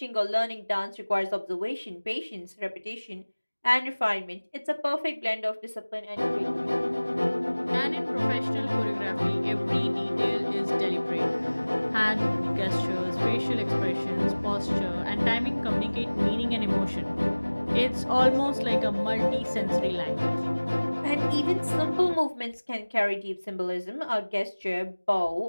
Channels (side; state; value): both; inverted; correlation -1.00